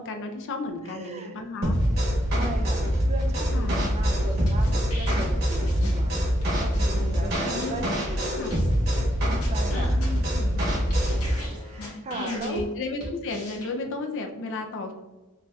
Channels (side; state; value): both; normal; correlation 0.79